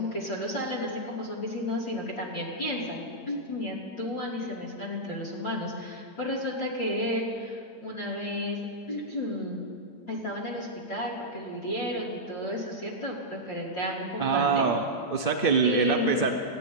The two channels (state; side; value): late; right; 8.7 ms